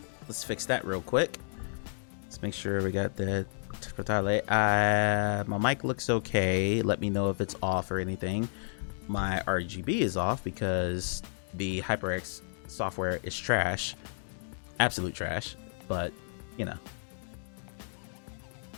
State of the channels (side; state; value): right; silent; digital silence